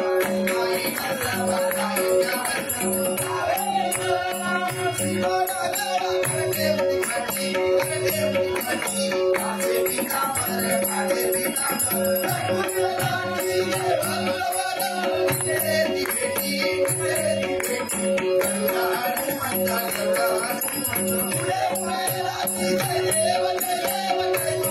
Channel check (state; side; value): identical; both; correlation 1.00